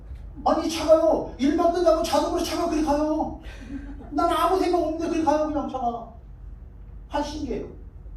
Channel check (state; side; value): identical; both; correlation 1.00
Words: 아니 차가요. 일만 끝나고 자동으로 차가 그리 가요. 난 아무 생각 없는데 그리 가요. 그냥 차가. 한 신기해요.